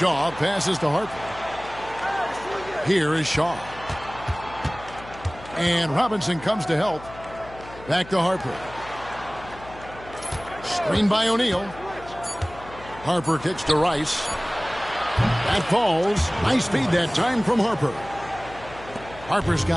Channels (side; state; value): left; noise; hum, 17 dB below the sound